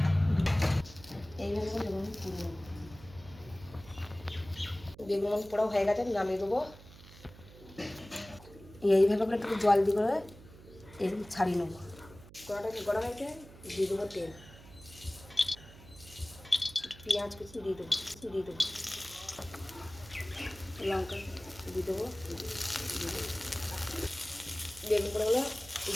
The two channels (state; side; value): noise; right; hum, 19 dB below the sound